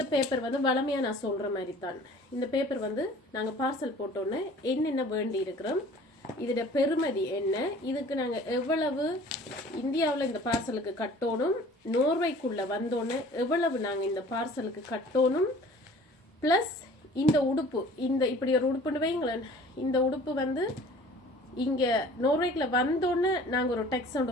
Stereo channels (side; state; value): both; normal; correlation 0.48